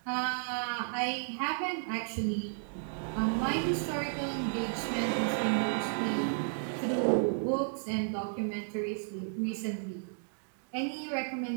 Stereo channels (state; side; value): silent; left; digital silence